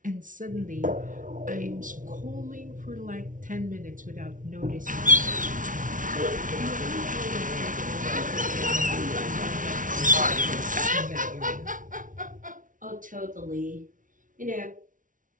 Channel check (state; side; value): late; left; 0.38 ms